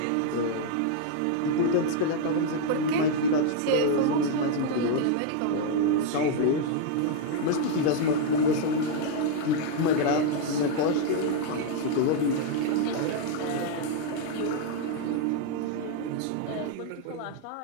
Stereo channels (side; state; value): both; different; correlation 0.00